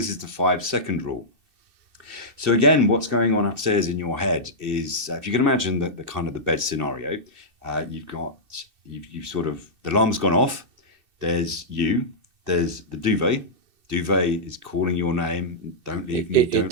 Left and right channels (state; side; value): late; left; 2.7 ms